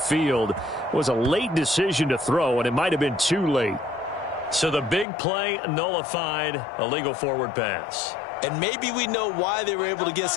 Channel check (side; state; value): right; drops out; at 5.1 s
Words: It was a late decision to throw, and it might have been too late. So the big play nullified, a legal forward pass. And maybe we know why they were able to get